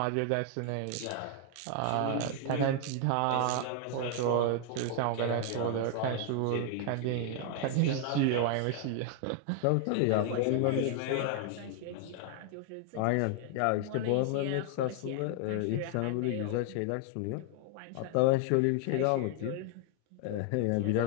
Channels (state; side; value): different; both; correlation 0.00